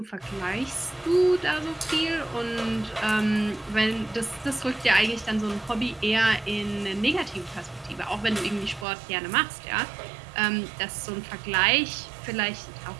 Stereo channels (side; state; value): left; drops out; at 8.8 s